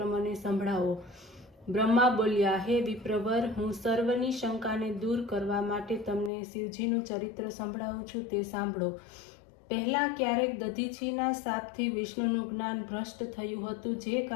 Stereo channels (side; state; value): right; drops out; at 6.3 s